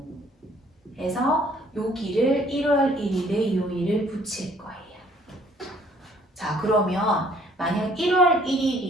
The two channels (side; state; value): both; normal; correlation 0.60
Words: 해서 여기를 1월 1일의 요일을 붙일 거예요. 자, 그러면 만약 1월